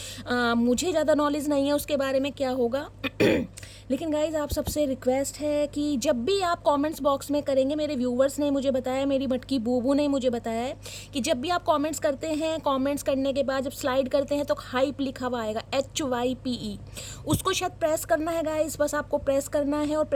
मुझे ज़्यादा नॉलेज नहीं है उसके बारे में क्या होगा लेकिन गाइज आप सबसे रिक्वेस्ट है कि जब भी आप कमेंट्स बॉक्स में करेंगे, मेरे व्यूवर्स ने मुझे बताया, मेरी मटकी बूबू ने मुझे बताया है कि जब भी आप कमेंट्स करते हैं, कमेंट्स करने के बाद जब स्लाइड करते हैं तो हाइप लिखा हुआ आएगा HYPE, उसको शायद प्रेस करना है गाइज। बस आपको प्रेस करना है और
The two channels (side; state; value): both; identical; correlation 1.00